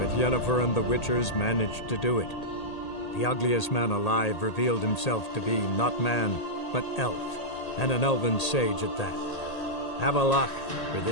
Yennefer and the Witchers managed to do it. The ugliest man alive revealed himself to be not man, but elf, and an elven sage at that. Avalach, for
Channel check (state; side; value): late; right; 1.8 ms